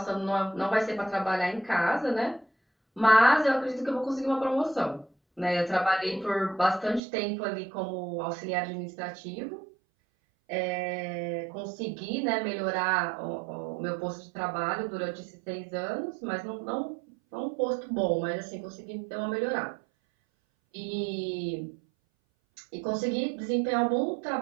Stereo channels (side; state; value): left; drops out; at 7.0 s